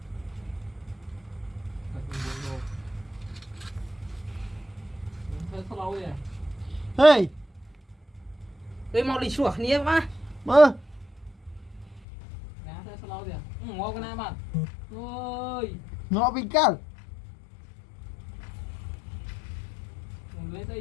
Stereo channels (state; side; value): drops out; right; at 12.1 s